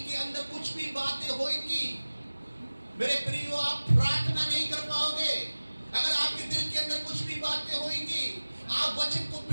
अंदर कुछ भी बातें होंगी, मेरे प्रियो, आप प्रार्थना नहीं कर पाओगे। अगर आपके दिल के अंदर कुछ भी बातें होंगी, आप वचन को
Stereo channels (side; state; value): both; inverted; correlation -1.00